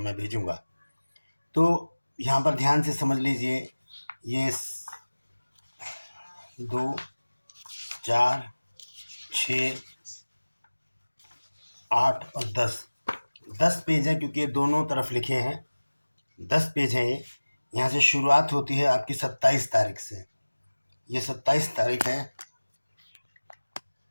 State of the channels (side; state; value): both; inverted; correlation -1.00